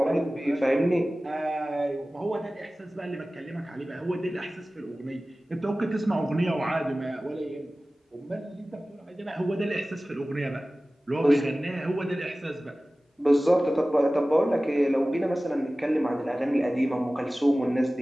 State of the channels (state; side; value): normal; both; correlation 0.97